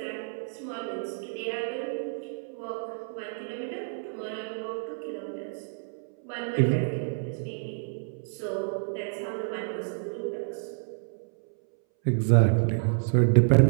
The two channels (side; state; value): left; silent; 59 dB below the other